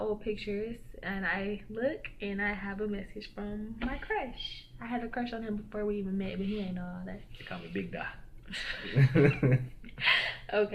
old pictures. And I look and I have a message from my crush. I had a crush on him before we even met, but he ain't know all that. They call me Big Da.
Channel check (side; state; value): both; identical; correlation 1.00